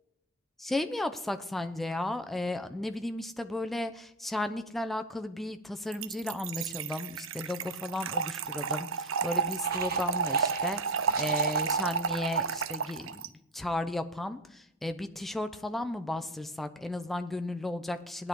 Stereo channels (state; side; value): normal; both; correlation 0.23